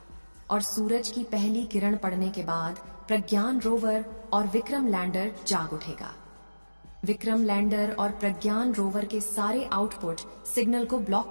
और सूरज की पहली किरण पड़ने के बाद प्रज्ञान रोवर और विक्रम लैंडर जाग उठेगा। विक्रम लैंडर और प्रज्ञान रोवर के सारे आउटपुट सिग्नल को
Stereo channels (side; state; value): both; inverted; correlation -1.00